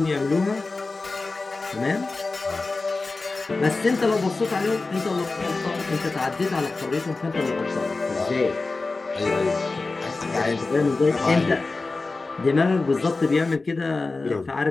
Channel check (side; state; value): right; quieter; 3.6 dB